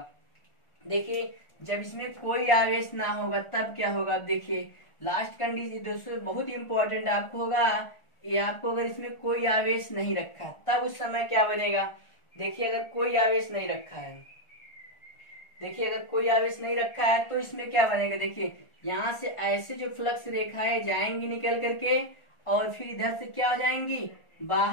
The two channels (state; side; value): late; right; 1.4 ms